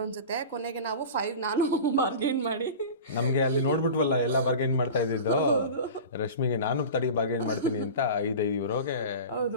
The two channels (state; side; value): inverted; both; correlation -0.33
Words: ಅನ್ಸುತ್ತೆ. ಕೊನೆಗೆ ನಾವು 5 ನಾನು ಬಾರ್ಗೇನ್ ಮಾಡಿ, ನಮ್ಗೆ ಅಲ್ಲಿ ನೋಡ್ಬಿಟ್ವಲ್ಲ ಎಲ್ಲ ಬಾರ್ಗೇನ್ ಮಾಡ್ತಾ ಇದ್ದಿದ್ದು. ರಶ್ಮಿಗೆ ನಾನು ಬಾರ್ಗೇನ್ ಮಾಡ್ತೀನಿ ಅಂತ €5